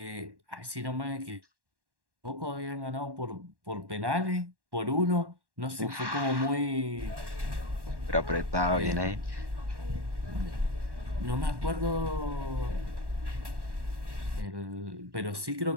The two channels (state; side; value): late; left; 1.1 ms